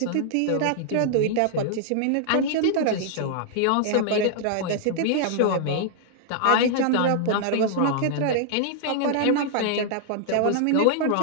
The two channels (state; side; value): different; both; correlation -0.01